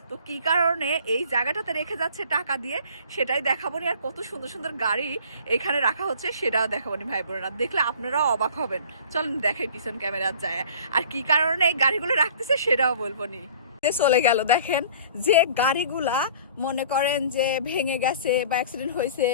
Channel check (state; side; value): inverted; both; correlation -0.48